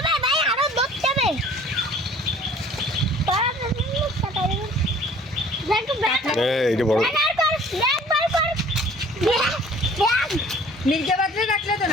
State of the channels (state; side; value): normal; both; correlation 0.51